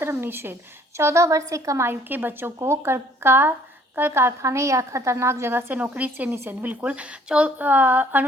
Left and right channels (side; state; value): both; normal; correlation 0.59